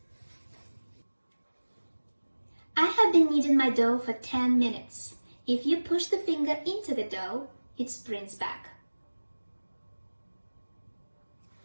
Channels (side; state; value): both; inverted; correlation -1.00